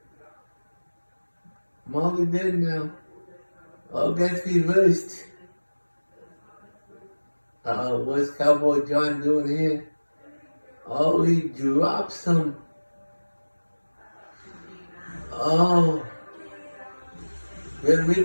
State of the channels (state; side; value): inverted; both; correlation -1.00